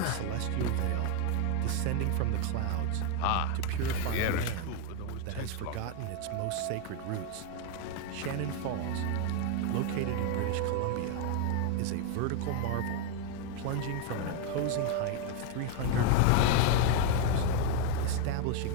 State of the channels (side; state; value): both; different; correlation 0.01